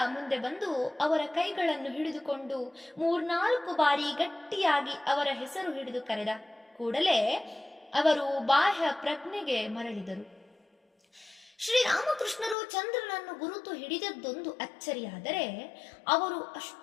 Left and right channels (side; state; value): right; drops out; at 12.6 s